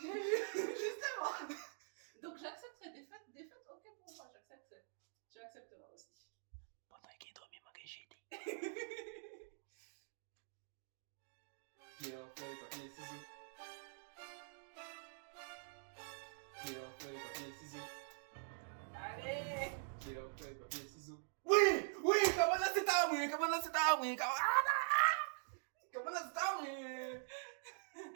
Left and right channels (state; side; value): silent; left; digital silence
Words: Donc j'accepte cette défaite, ok pour moi, j'accepte. Tu accepteras aussi. Pendant qu'il dormait, moi que j'ai dit. Pierre, feuille, papier, ciseaux. Pierre, feuille, papier, ciseaux. Allez. Pierre, feuille, papier, ciseaux. Oui, comment là c'est à moi,